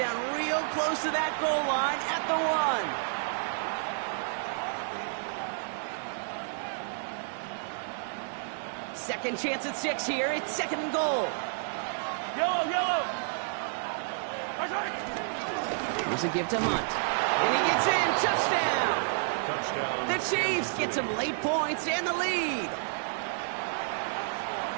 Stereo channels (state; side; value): silent; left; digital silence